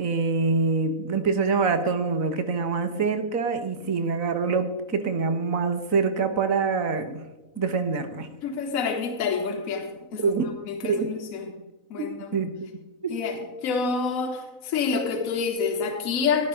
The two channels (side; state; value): right; late; 4.0 ms